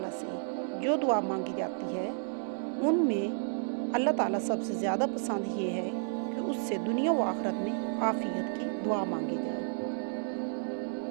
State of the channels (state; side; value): silent; left; 56 dB below the other